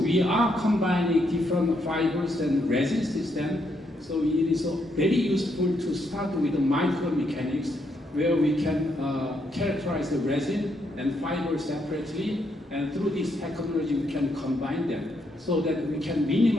are combining different fibers and resin system, so it is very useful to start with the micromechanics, where we can characterize the resin and fiber separately, and through this technology we can combine them so that we can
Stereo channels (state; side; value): normal; both; correlation 0.77